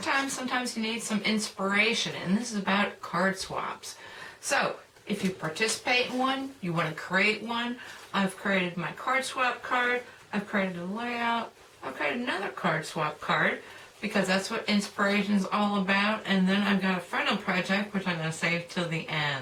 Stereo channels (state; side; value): identical; both; correlation 1.00